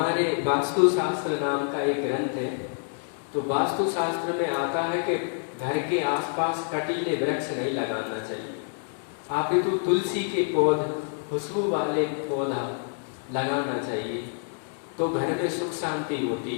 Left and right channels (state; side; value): silent; right; 58 dB below the other